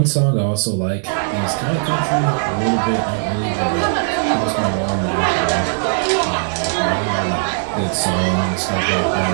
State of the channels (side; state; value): left; silent; digital silence